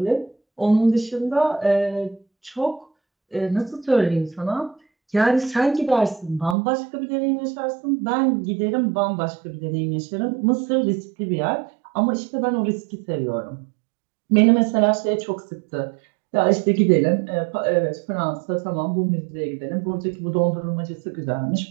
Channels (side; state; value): left; drops out; at 6.6 s